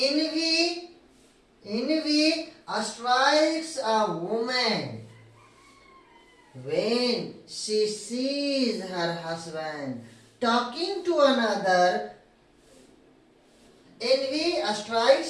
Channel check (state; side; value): identical; both; correlation 1.00